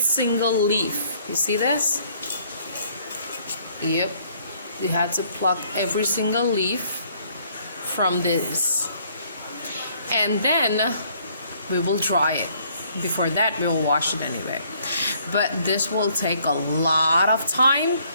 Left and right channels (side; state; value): both; inverted; correlation -0.64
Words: leaf. You see this? Yep. We have to pluck every single leaf from this. And then we will dry it. Before that, we will wash it anyway. But this will take a lot of time.